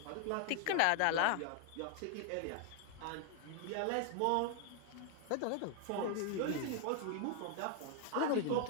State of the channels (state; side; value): different; both; correlation 0.00